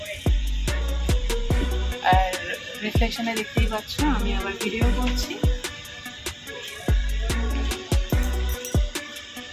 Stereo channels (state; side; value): identical; both; correlation 1.00